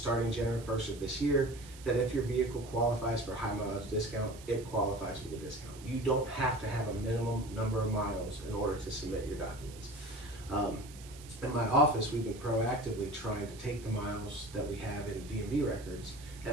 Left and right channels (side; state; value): right; noise; hiss, 18 dB below the sound